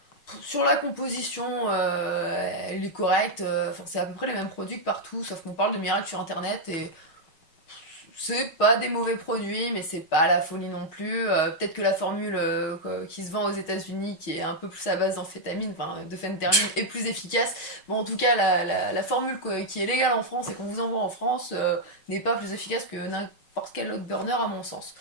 Sur la composition, elle est correcte. C'est à peu près les mêmes produits que partout, sauf qu'on parle de miracles sur internet et c'est pas des mauvais produits, mais c'est pas la folie non plus. Peut-être que la formule qui se vend aux États-Unis, qui est un peu plus à base d'amphétamine, enfin de phéntermine, est plus efficace. Bon, en tout cas, la formule qui est légale en France et qu'on vous envoie en France n'est pas plus efficace que n'importe quel autre burner, à mon sens.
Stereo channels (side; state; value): right; late; 6.4 ms